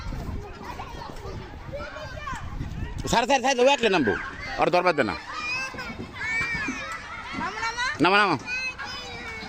সাড়ে সাড়ে সাড়ে একলে নামবো, আর দরবার দে না। নামা নামা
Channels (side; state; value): both; identical; correlation 1.00